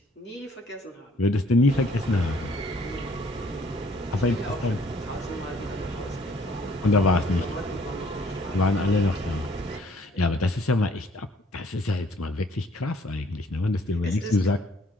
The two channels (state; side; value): normal; both; correlation 0.60